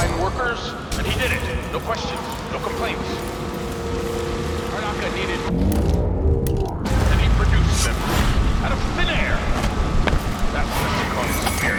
workers, and he did it. No questions, no complaints. Karnaka needed... and he produced them. Out of thin air. That's the Serconian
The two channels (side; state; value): both; identical; correlation 1.00